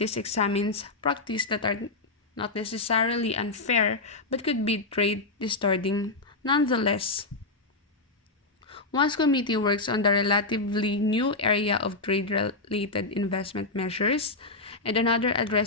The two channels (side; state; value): right; quieter; 3.3 dB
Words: examine practices that are not necessarily unfair but could be trade distorting nonetheless. One committee works on the relatively new area of trade-related investment measures, and another